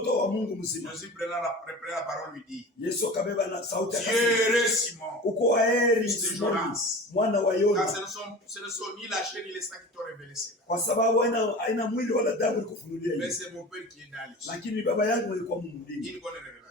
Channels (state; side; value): normal; both; correlation 0.36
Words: wa Mungu mzima. Jésus prenant la parole lui dit. Yesu akabeba na sauti akasema. Heureux Simon. Uko heri Simoni, mwana wa Yona. Car ce ne sont ni la chair ni le sang qui t'ont révélé cela. Kwa sababu haina mwili wala damu ilikufunulia hiyo. Mais c'est mon Père qui est dans les cieux. Lakini baba yangu alikuwa Mungu mbinguni. Une bonne